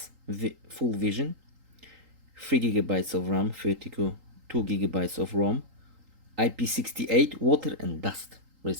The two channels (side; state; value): left; late; 3.8 ms